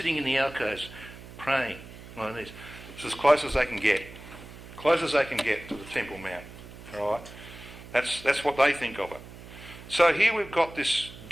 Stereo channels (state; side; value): noise; right; hum, 16 dB below the sound